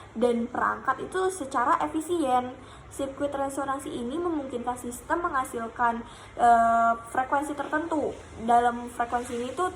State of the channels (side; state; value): both; identical; correlation 1.00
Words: dan perangkat itu secara efisien. Sirkuit resonansi ini memungkinkan sistem menghasilkan frekuensi tertentu. Dalam frekuensi ini tuh